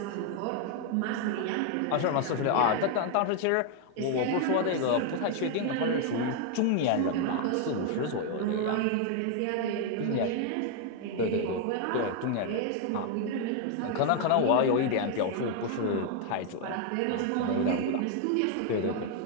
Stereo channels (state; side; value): different; both; correlation 0.00